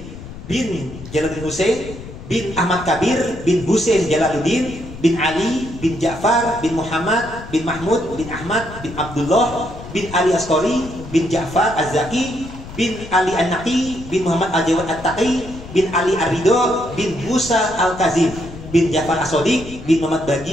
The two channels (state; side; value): noise; left; rumble, 14 dB below the sound